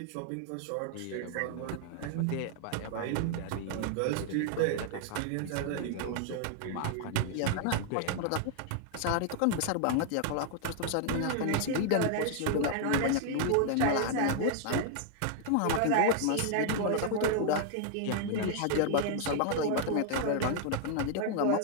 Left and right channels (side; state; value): both; different; correlation 0.00